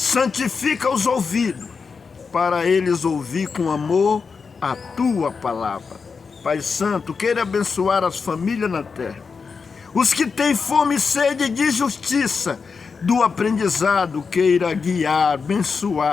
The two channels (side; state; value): right; quieter; 5.2 dB